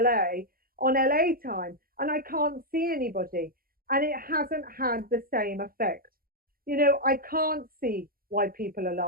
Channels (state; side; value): late; left; 0.42 ms